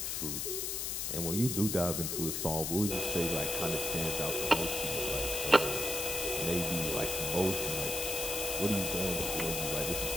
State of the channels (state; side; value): noise; left; hiss, 1 dB below the sound